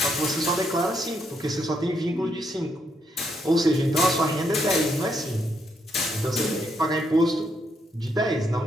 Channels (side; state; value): both; normal; correlation 0.76